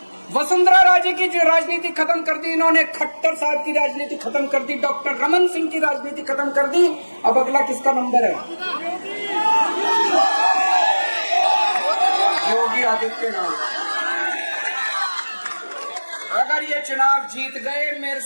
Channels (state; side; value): inverted; both; correlation -1.00